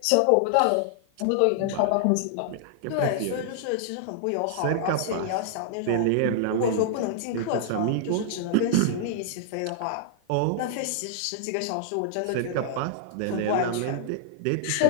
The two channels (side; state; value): both; different; correlation -0.01